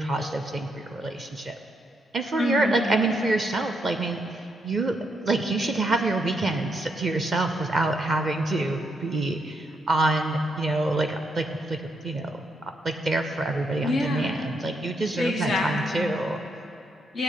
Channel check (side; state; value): both; normal; correlation 0.78